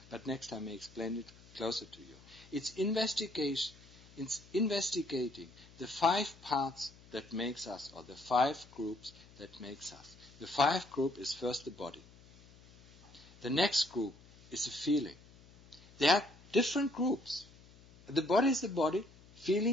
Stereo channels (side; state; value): left; noise; hum, 23 dB below the sound